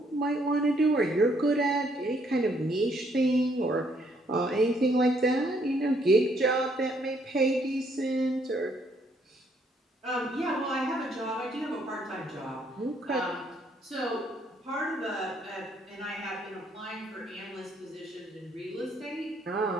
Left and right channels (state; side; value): normal; both; correlation 0.69